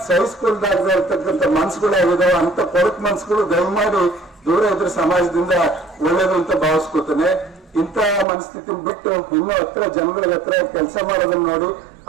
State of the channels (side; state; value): left; drops out; at 8.2 s